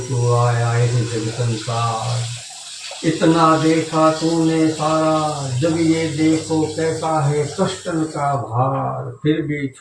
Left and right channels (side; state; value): both; identical; correlation 1.00